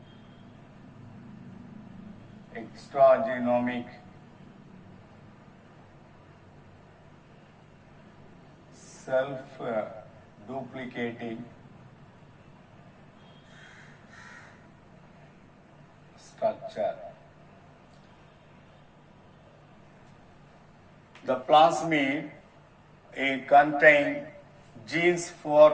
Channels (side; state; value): both; identical; correlation 1.00